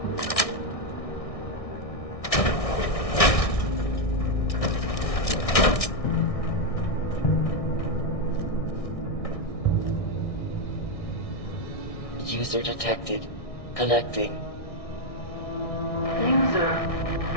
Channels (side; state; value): right; late; 1.6 ms